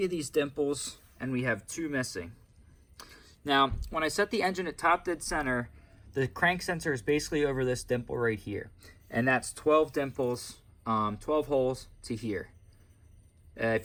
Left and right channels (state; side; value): identical; both; correlation 1.00